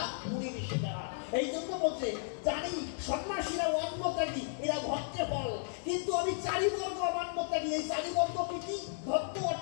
মুড়ি ঋষি তারা। এই জন্য বলছে জানি সন্ন্যাসীরা অন্ন ত্যাগী, এরা ভক্তের ফল। কিন্তু আমি চারিবর্গ অমান্য ত্যাগী। এই চারিবর্গ কি? ভক্ত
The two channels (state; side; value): silent; right; digital silence